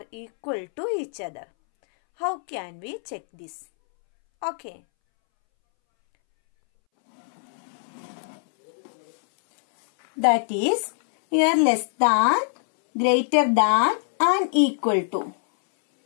equal to each other. How can we check this? Okay. That is, here less than, greater than and equal to.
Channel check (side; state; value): right; silent; 63 dB below the other